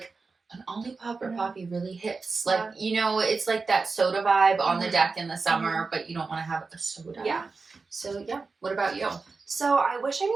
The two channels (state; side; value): quieter; left; 4.3 dB